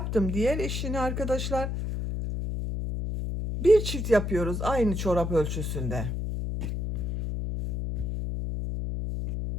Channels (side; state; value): left; noise; hum, 3 dB below the sound